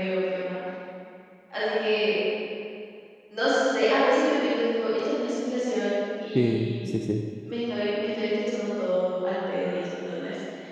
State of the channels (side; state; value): both; identical; correlation 1.00